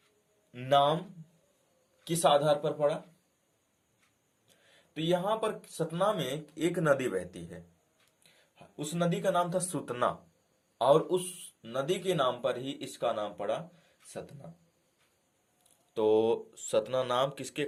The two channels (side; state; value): both; identical; correlation 1.00